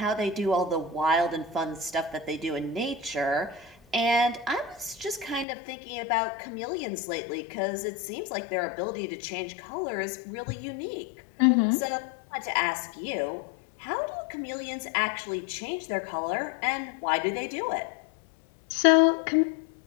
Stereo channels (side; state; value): right; drops out; at 5.5 s